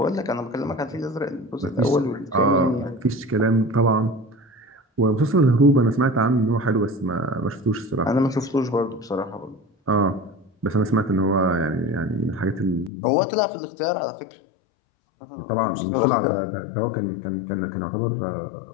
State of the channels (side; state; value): right; drops out; at 12.9 s